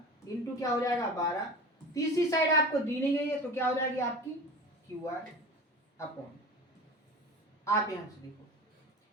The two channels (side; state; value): both; normal; correlation 0.34